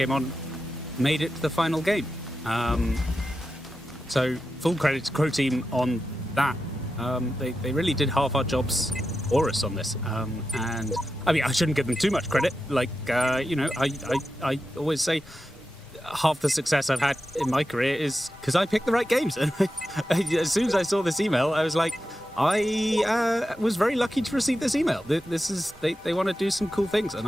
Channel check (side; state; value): both; normal; correlation 0.90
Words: on made it to the final game. So full credit to Crow Team on that. They really did half our jobs for us on this. And I mean, I shouldn't give them too much credit. Like, I always say half the success I've had in my career is because I picked the right games. And as soon as I saw this email, I was like, I was very lucky to receive this email. They want to do some cool things, and